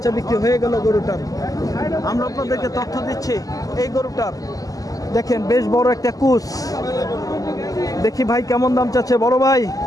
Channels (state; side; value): late; right; 0.17 ms